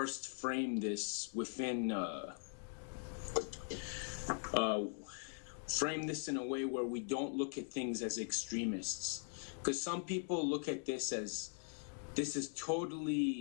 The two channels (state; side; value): silent; right; 50 dB below the other